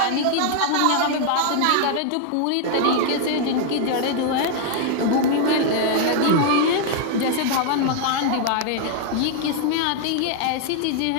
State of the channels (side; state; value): both; different; correlation 0.00